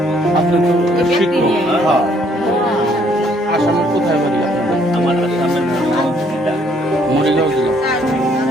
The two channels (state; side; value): normal; both; correlation 0.65